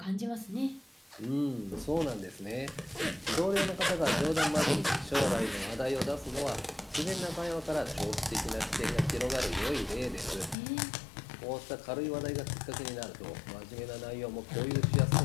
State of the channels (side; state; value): right; drops out; at 10.6 s